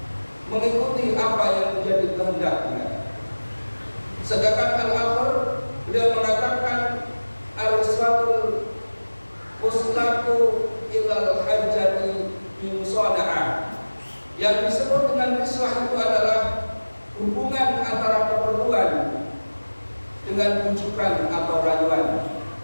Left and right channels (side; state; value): both; inverted; correlation -1.00